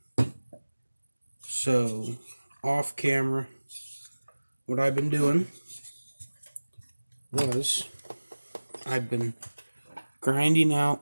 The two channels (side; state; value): both; inverted; correlation -1.00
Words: So off camera, what I've been doing was I've been grinding out